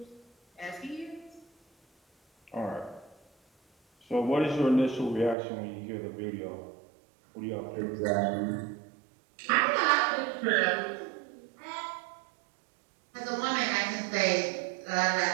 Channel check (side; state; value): left; drops out; at 5.4 s